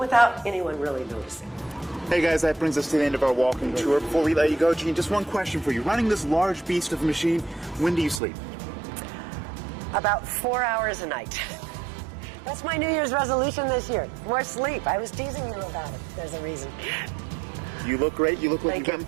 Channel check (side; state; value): left; drops out; at 8.2 s